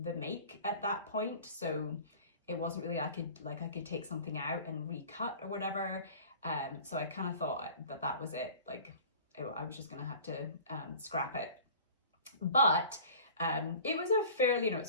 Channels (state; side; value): inverted; both; correlation -0.43